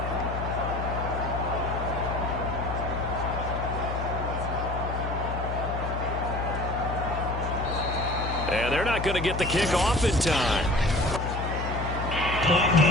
And they're not going to get the kick off in time. Point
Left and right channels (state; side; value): noise; left; hum, 4 dB below the sound